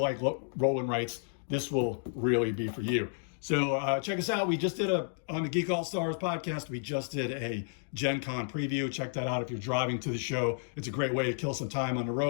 roll and writes, this will really be for you. So check us out. We just did on the Geek All Stars podcast, we just did a Gen Con preview. Check that out if you're driving to the show. It's a great way to kill some time on the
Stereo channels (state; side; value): silent; right; digital silence